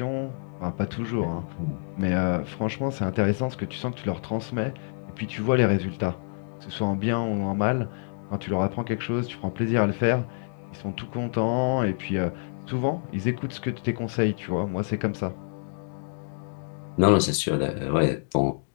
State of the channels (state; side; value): silent; right; digital silence